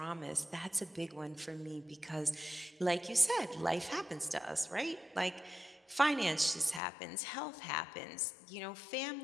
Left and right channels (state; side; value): drops out; right; at 6.8 s